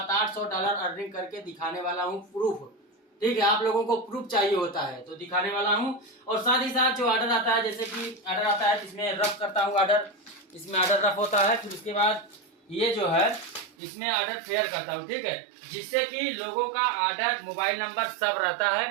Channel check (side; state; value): left; drops out; at 13.8 s